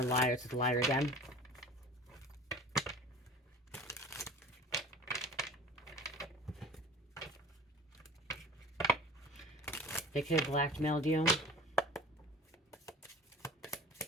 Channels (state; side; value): normal; both; correlation 0.42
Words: liars. It's a liar again. They could have blackmailed you.